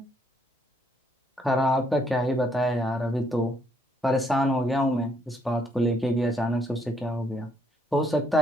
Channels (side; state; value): both; normal; correlation 0.70